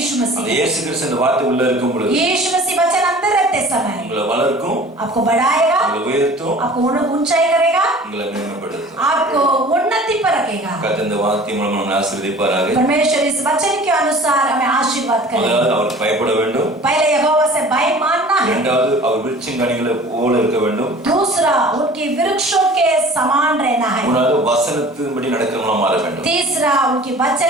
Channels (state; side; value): normal; both; correlation 0.45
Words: அந்த मसीह। இயேசு கிறிஸ்து அந்த வார்த்தை உள்ள இருக்கும் பொழுது यीशु मसीह वचन अंदर रहते समय உங்களை வளர்க்கும், आपको बढ़ाएगा, உங்களை உயர்த்தும், आपको ऊंचाई करेगा, உங்களை மேன்மைப்படுத்தும். आपको उन्नति पर रखेगा। கர்த்தர் இந்த வார்த்தை மூலம் நம்மை ஆசீர்வதிப்பாராக. परमेश्वर इस वचन के अनुसार हमें आशीर्वाद करे। முதலாவது அவருக்கு பயப்பட வேண்டும். पहले यहोवा से भय मानना है। இரண்டாவது அவர் விருட்சங்கனிகளை போல இருக்க வேண்டும். दूसरा उनके वृक्षों के समान रहना है। மூணாவது வசனத்தின்படி நடக்கிறவங்களா மாற வேண்டும். तीसरा उनके